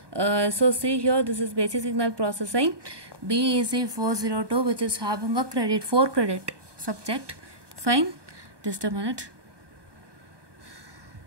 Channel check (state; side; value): late; left; 1.2 ms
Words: So see here, this is basic signal processing BEC 402 which is having a 4 credit subject. Fine, just a minute.